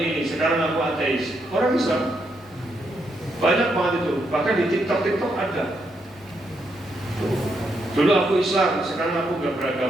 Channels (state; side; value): normal; both; correlation 0.79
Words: sekarang aku ateis. Orang Islam banyak banget itu. Bahkan di TikTok ada. Dulu aku Islam, sekarang aku nggak